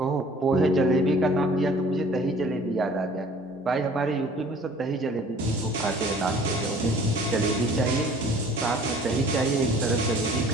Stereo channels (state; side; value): normal; both; correlation 0.51